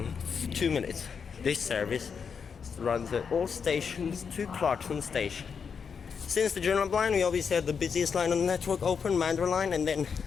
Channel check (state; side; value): quieter; right; 6.3 dB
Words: 2 minutes. This service runs at all stations to Clarkson Station. Since the Joondalup line, we obviously had the busiest line on the network open, Mandurah line, and then